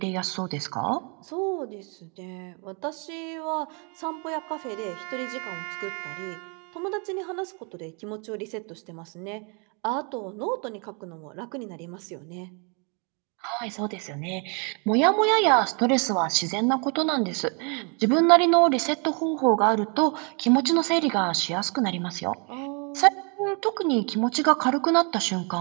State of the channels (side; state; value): left; quieter; 35.1 dB